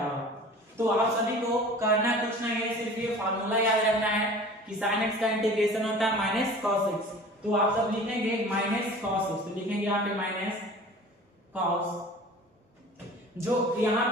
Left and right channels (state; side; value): normal; both; correlation 0.42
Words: तो आप सभी को करना कुछ नहीं है, सिर्फ ये फार्मूला याद रखना है कि sin x का इंटीग्रेशन होता है माइनस cos x। तो आप सब लिखेंगे माइनस cos x, तो लिखेंगे यहाँ पे माइनस cos, जो यहाँ